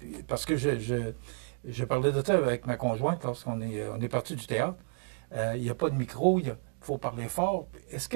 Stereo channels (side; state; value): left; silent; 57 dB below the other